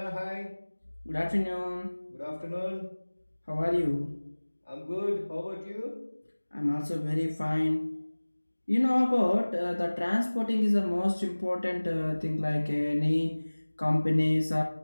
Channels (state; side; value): inverted; both; correlation -1.00